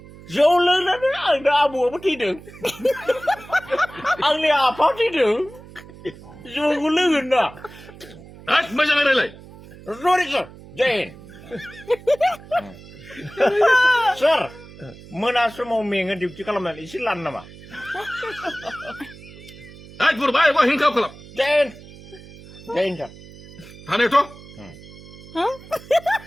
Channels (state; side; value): noise; right; hum, 18 dB below the sound